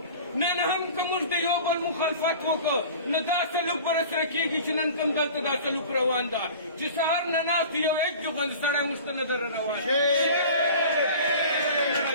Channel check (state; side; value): inverted; both; correlation -0.41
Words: نن هم که موږ د یو بل مخالفت وکړو، نو دا سلوک به راسره کېږي چې نن کوم دلته دا سلوک روان ده چې سهار نه ناست یو ایچ ډي غوندې سړی موږ ته نه در روان.